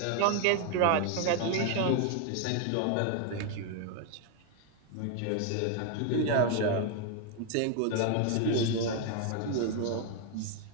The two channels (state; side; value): different; both; correlation 0.01